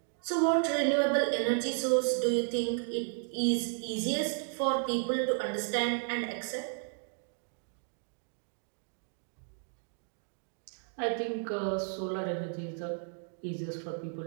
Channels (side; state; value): left; silent; 55 dB below the other